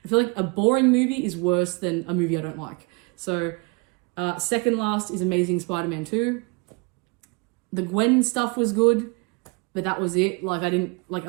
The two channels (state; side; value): quieter; left; 30.3 dB